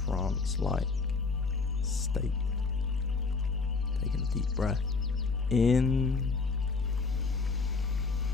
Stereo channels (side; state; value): right; quieter; 4.3 dB